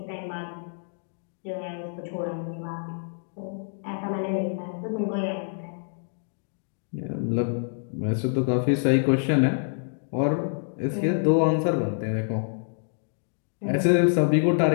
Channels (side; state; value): right; silent; digital silence